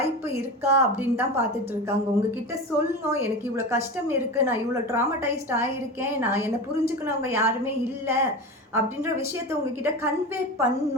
இருக்கா அப்படின்னு தான் பார்த்துட்டு இருக்காங்க. உங்ககிட்ட சொல்லணும், எனக்கு இவ்வளோ கஷ்டம் இருக்குது, நான் இவ்வளோ ட்ராமடைஸ்ட் ஆகியிருக்கேன், நான் என்னை புரிஞ்சுக்கணவங்க யாருமே இல்லை அப்படின்ற விஷயத்தை உங்ககிட்ட கன்வே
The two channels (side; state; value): both; normal; correlation 0.27